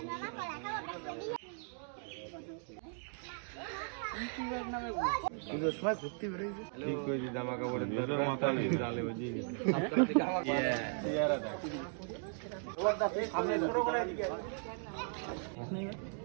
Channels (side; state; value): left; silent; 53 dB below the other